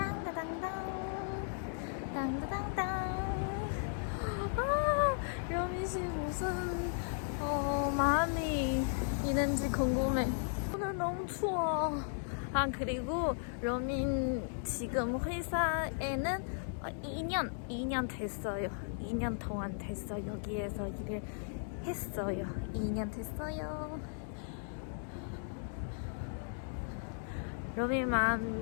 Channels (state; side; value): silent; right; digital silence